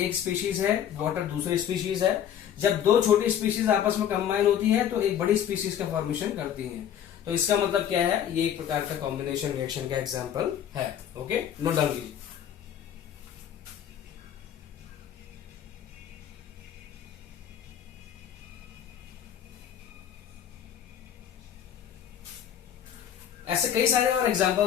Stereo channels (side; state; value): right; quieter; 9.7 dB